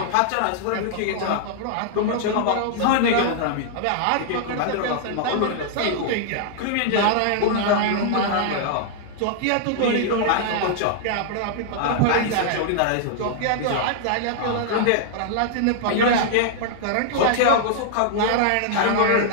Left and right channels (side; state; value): both; different; correlation -0.01